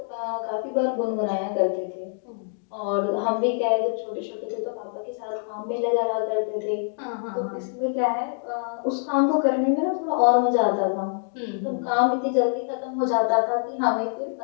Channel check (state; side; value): silent; right; digital silence